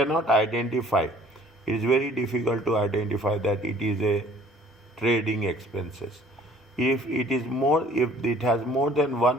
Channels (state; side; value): normal; both; correlation 0.54